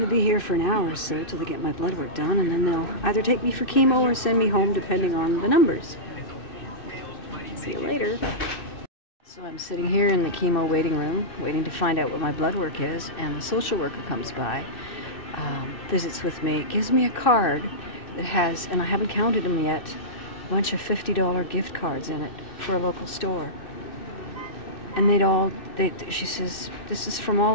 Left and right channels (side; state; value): right; late; 2.6 ms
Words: to be here for an hour or so till they get my blood work done, and then they'll either take me for chemo or send me home depending on the numbers. See you later. So I'm sitting here in the chemo waiting room, waiting to find out what my blood work is, and the social worker comes by, visits with me, gives me a card that has, and I haven't counted them yet, a bunch of $50 gift cards in it for a local store. And she says, this is from